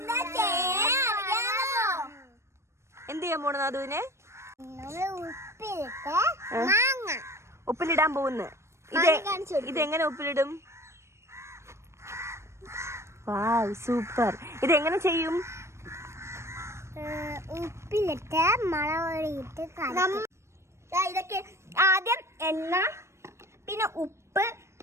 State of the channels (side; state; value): left; late; 0.13 ms